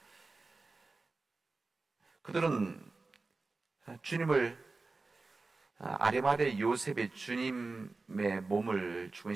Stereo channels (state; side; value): quieter; left; 3.7 dB